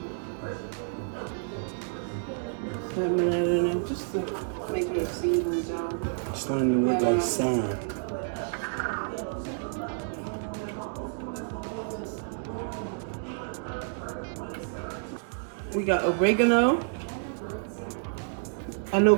Having that in there just to make sure it seasons, y'all. It's starting to look like sand. We got oregano. I know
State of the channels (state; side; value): silent; left; digital silence